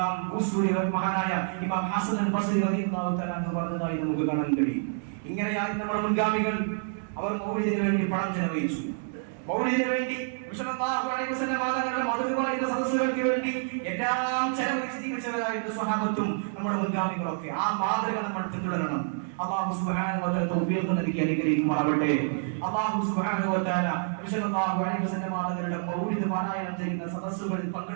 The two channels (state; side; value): silent; left; 58 dB below the other